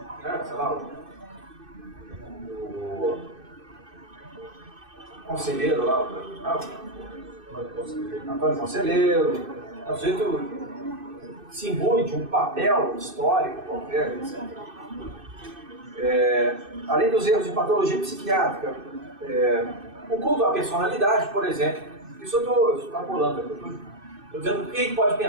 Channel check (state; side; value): late; left; 2.6 ms